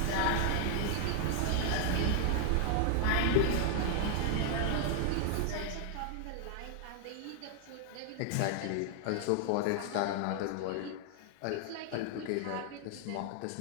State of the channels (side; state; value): both; different; correlation 0.00